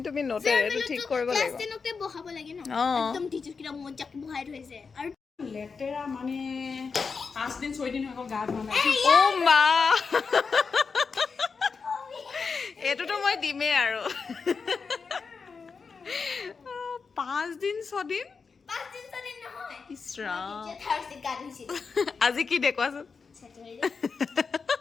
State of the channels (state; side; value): quieter; right; 5.2 dB